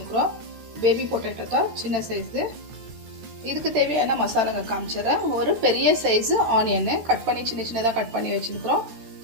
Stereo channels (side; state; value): left; late; 13 ms